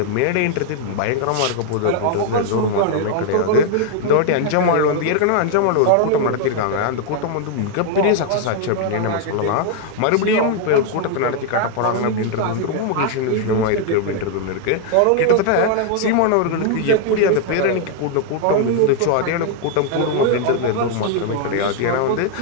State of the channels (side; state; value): both; different; correlation 0.00